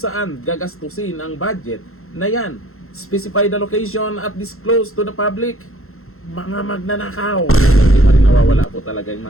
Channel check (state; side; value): late; right; 0.62 ms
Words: gagastusin ang budget na yan. Specify the location at disclose to the public. Mga magnanakaw. Hindi pa rin nawawala po talaga yung